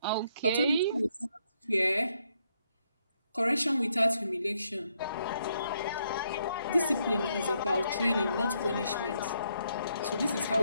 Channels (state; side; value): inverted; both; correlation -0.75